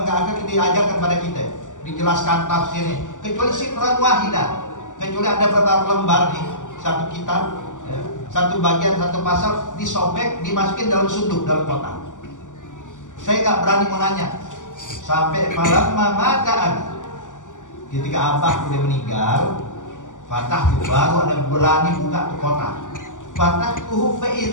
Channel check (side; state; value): right; late; 0.87 ms